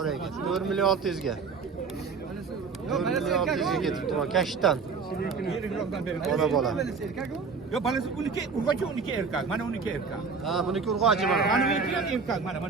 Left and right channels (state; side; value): quieter; left; 5.1 dB